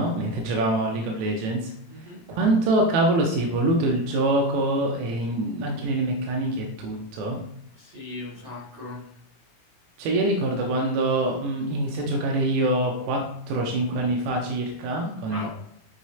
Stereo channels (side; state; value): left; late; 17 ms